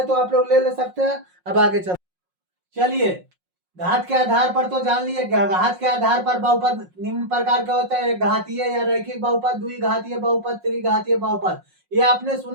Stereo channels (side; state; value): left; late; 5.5 ms